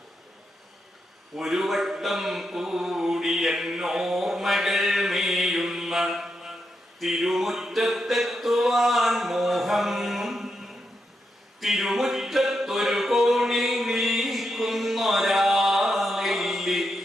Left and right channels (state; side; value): normal; both; correlation 0.84